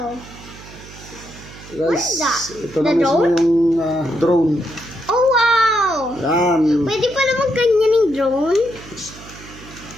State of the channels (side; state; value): right; noise; hum, 18 dB below the sound